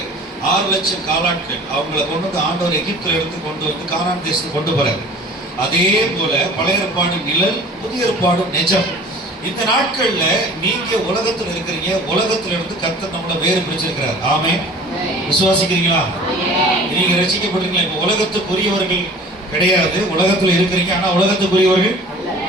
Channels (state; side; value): normal; both; correlation 0.45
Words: 6 லட்சம் காலாட்கள், அவங்களை கொண்டு ஆண்டவர் எகிப்தில் எடுத்து கொண்டு கானான் தேசத்துக்கு கொண்டு போறார். அதே போல பழைய ஏற்பாடு நிழல், புதிய ஏற்பாடு நிஜம். இந்த நாட்கள்ல நீங்க உலகத்துல இருக்கிறீங்க, உலகத்துல இருந்து கர்த்தர் நம்மளை வேறு பிரிச்சிருக்கிறார். ஆமென். விசுவாசிக்கிறீங்களா? நீங்க ரட்சிக்கப்பட்டீங்களா? இப்ப உலகத்துக்குரியவர்கள் கிடையாது, உலகத்துல இருக்கிறீங்க. ஆனா உலகத்துக்குரியவர்கள்